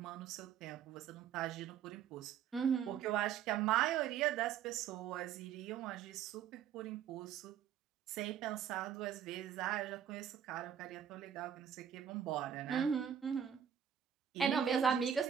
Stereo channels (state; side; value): quieter; left; 8.8 dB